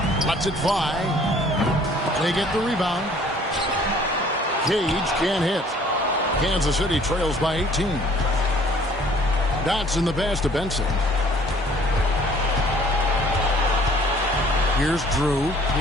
Lets it fly. They get the rebound. Cage can't hit. Kansas City trails by 18. Dotson the pass to Benson. Here's Drew.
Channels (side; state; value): both; normal; correlation 0.56